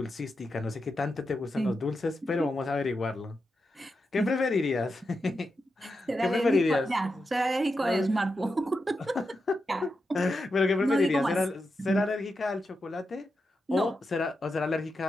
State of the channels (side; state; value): both; normal; correlation 0.88